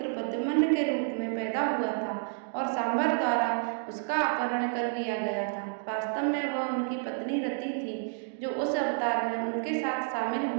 प्रद्युम्न के रूप में पैदा हुआ था और सांभर द्वारा उसका अपहरण कर लिया गया था। वास्तव में वह उनकी पत्नी रति थी, जो उस अवतार में उनके साथ शामिल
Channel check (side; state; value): left; silent; 58 dB below the other